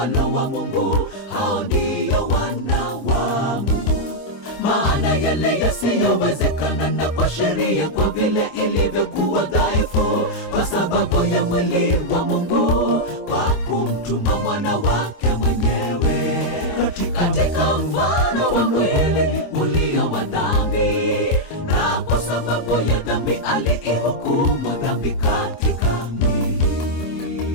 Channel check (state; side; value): late; right; 25 ms